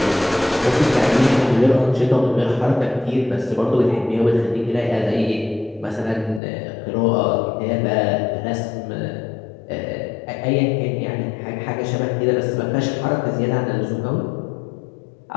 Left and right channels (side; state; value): right; drops out; at 6.4 s